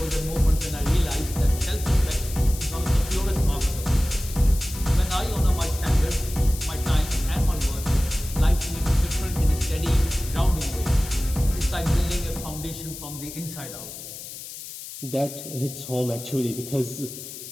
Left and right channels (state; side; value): noise; left; hiss, 11 dB below the sound